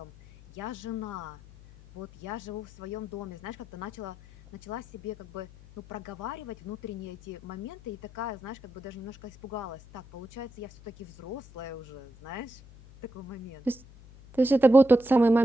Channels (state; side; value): noise; left; hum, 20 dB below the sound